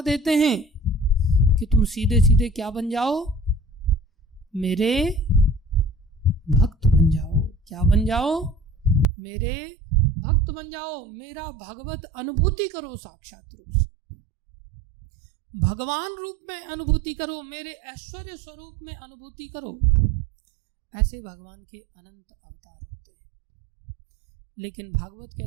देते हैं कि तुम सीधे सीधे क्या बन जाओ? मेरे भक्त बन जाओ। क्या बन जाओ? मेरे भक्त बन जाओ, मेरा भगवत अनुभूति करो, साक्षात रूप से भगवान रूप में अनुभूति करो, मेरे ऐश्वर्य स्वरूप में अनुभूति करो। ऐसे भगवान के अनंत अवतार होते हैं। लेकिन भागवत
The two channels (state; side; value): drops out; left; at 9.1 s